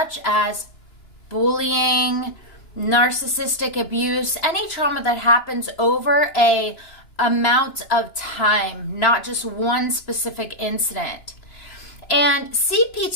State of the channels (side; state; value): right; late; 2.9 ms